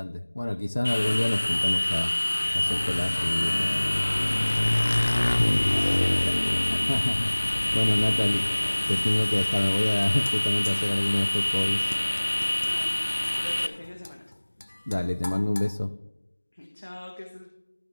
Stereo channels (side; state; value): both; inverted; correlation -1.00